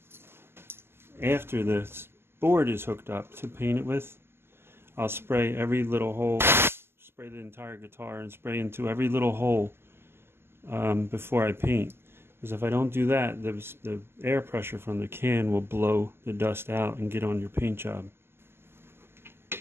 after the board is hooked up to paint it with, I'll spray every little hole, spray the entire guitar and spray into every little hole before I paint. Because if I don't do that, the air pressure from the can will blow the dust out and get on your paint job.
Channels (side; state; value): left; late; 0.12 ms